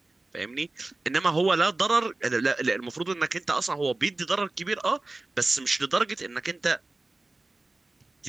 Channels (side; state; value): left; quieter; 3.1 dB